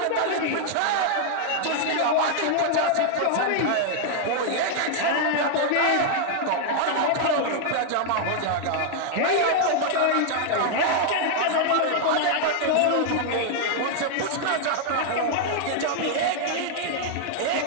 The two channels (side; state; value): both; different; correlation -0.01